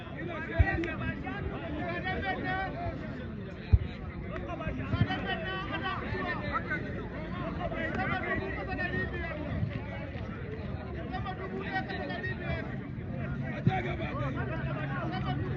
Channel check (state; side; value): identical; both; correlation 1.00